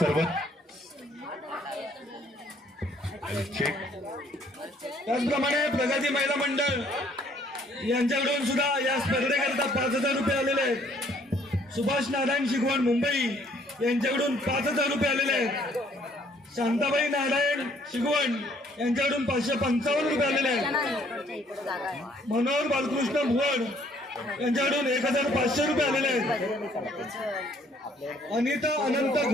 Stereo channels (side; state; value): both; normal; correlation 0.63